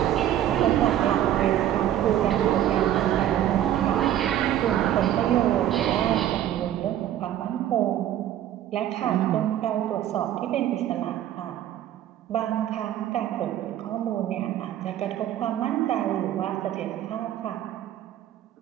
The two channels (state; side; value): quieter; left; 11.8 dB